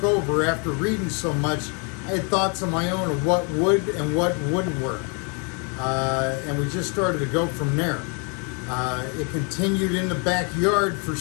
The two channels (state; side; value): quieter; right; 36.0 dB